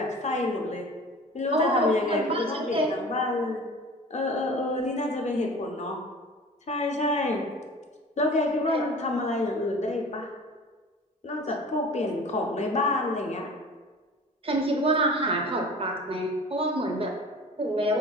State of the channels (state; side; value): normal; both; correlation 0.41